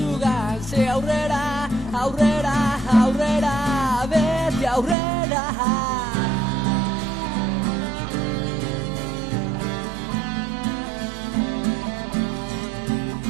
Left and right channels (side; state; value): left; drops out; at 5.0 s